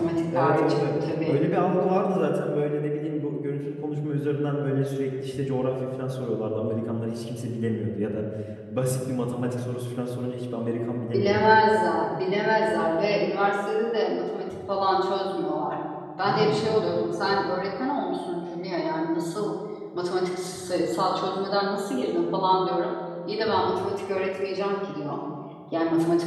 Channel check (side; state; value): both; identical; correlation 1.00